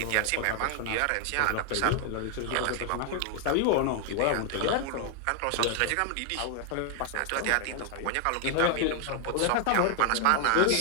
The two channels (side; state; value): both; different; correlation 0.00